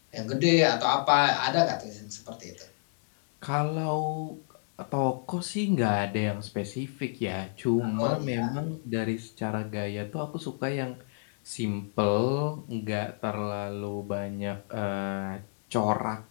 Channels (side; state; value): right; silent; 58 dB below the other